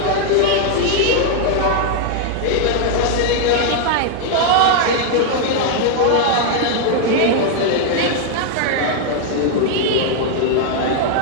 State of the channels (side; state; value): both; different; correlation 0.00